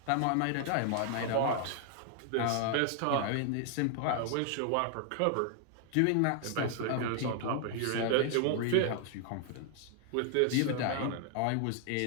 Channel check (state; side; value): different; both; correlation 0.00